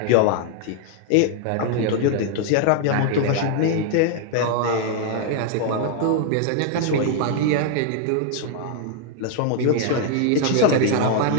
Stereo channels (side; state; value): both; different; correlation 0.00